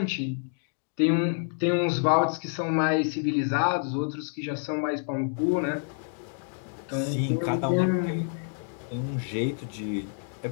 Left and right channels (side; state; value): right; silent; 59 dB below the other